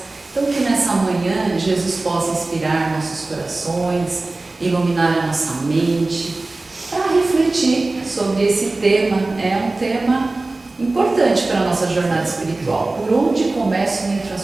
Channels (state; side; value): quieter; left; 3.2 dB